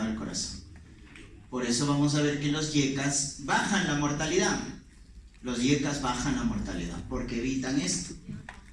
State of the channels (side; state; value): both; identical; correlation 1.00